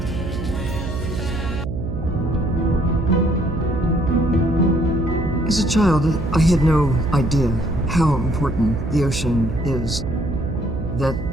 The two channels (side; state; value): right; noise; hum, 5 dB below the sound